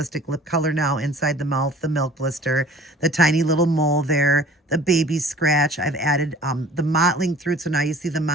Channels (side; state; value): both; normal; correlation 0.48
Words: lip color now inside the mouth, the milk blister, the tiny little mole there, the baby scratch. I've added the mottling through. So now you see the